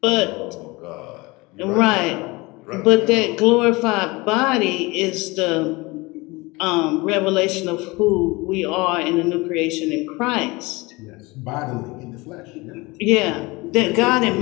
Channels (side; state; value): right; quieter; 23.7 dB